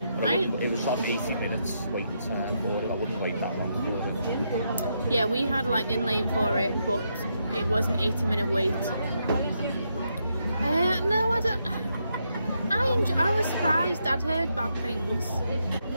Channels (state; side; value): inverted; both; correlation -0.80